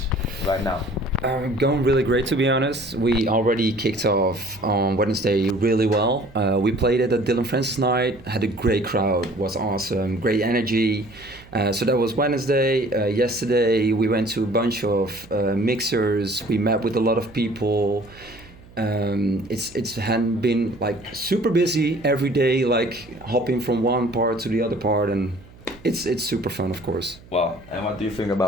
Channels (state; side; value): noise; right; hum, 22 dB below the sound